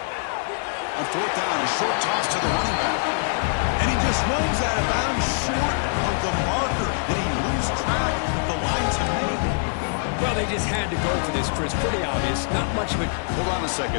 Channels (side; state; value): right; silent; digital silence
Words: On 4th down, a short toss to the running back. And he just runs out of bounds short of the marker. Did he lose track of the lines he made? Well, they just had to go for this, Chris. Pretty obvious. Not much of it. Hold on a